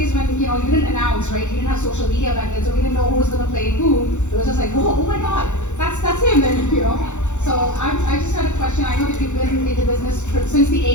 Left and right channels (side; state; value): right; late; 0.84 ms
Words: when you didn't announce, right? You didn't have social media back then, so we didn't know who was going to play who. It was just like, whoa, oh my God, that's him, and So I just had a question. I know that you've been in the business since the